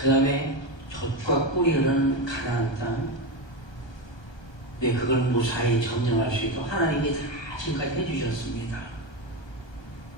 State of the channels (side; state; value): right; late; 1.3 ms